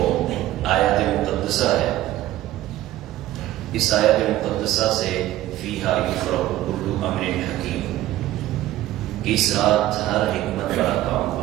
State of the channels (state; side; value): quieter; left; 14.7 dB